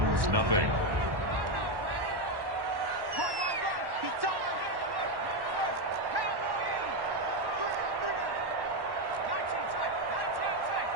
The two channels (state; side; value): late; left; 1.1 ms